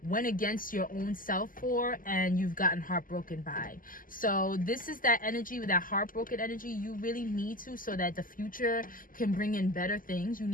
went against your own self for and you've gotten heartbroken by. So this is that energy, with that heartbroken energy you really need to, so that the future can bring in better things. You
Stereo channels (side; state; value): right; late; 0.40 ms